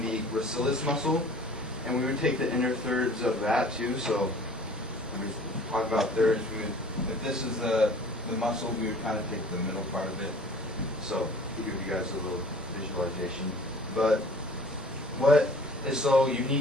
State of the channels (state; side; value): normal; both; correlation 0.48